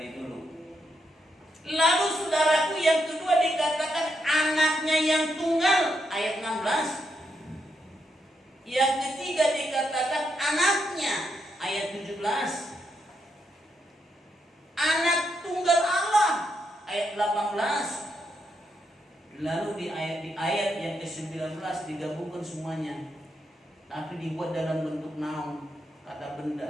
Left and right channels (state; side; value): normal; both; correlation 0.80